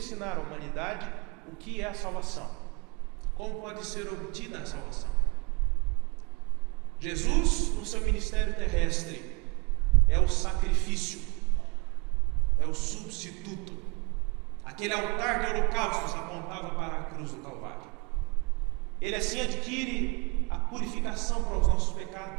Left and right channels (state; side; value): quieter; left; 29.0 dB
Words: à humanidade o que é a salvação, como pode ser obtida a salvação. Jesus, no seu ministério terrestre, é o sacrifício, é o substituto. Aquele altar de holocaustos apontava para a cruz do Calvário. Ele assim adquire a purificação para os nossos